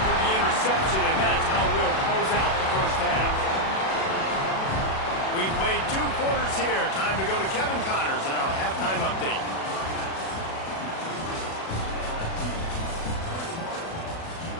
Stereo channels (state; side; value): late; right; 37 ms